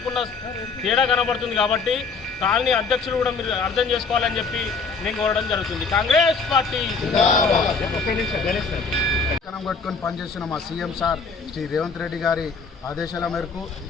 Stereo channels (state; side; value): quieter; right; 4.7 dB